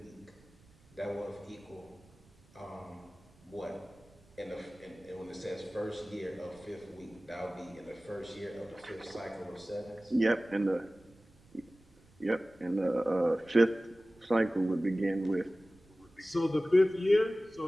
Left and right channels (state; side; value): noise; right; rumble, 28 dB below the sound